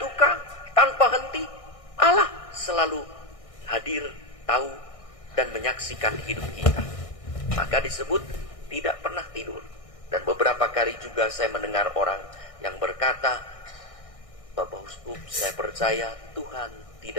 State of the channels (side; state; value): right; late; 1.6 ms